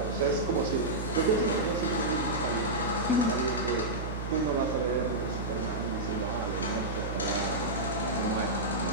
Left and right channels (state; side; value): noise; right; hum, 5 dB below the sound